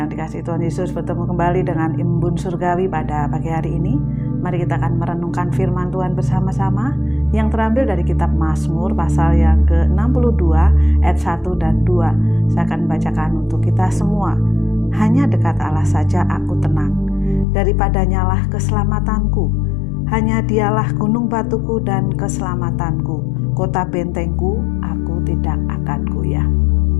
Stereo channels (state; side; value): drops out; right; at 17.4 s